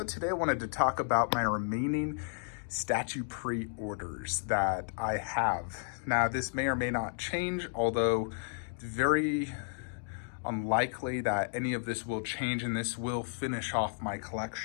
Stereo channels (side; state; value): right; silent; 56 dB below the other